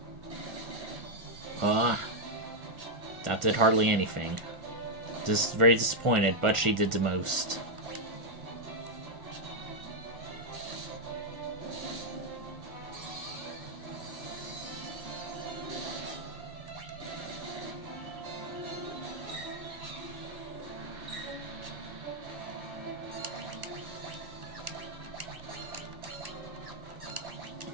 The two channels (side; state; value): left; late; 1.4 ms